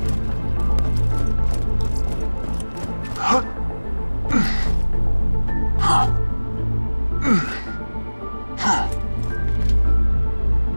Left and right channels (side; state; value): both; inverted; correlation -1.00